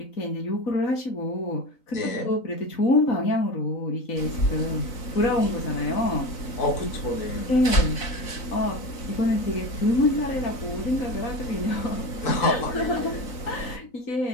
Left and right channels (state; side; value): late; right; 3.9 ms